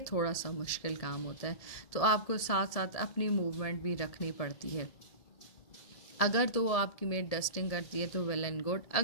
थोड़ा सा मुश्किल काम होता है, तो आपको साथ साथ अपनी मूवमेंट भी रखनी पड़ती है। अगर तो वो आपकी मेड डस्टिंग करती है तो वेल एंड गुड,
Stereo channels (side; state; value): right; late; 1.8 ms